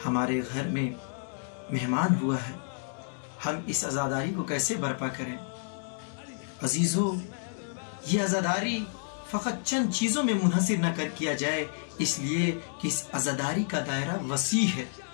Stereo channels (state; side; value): silent; right; 58 dB below the other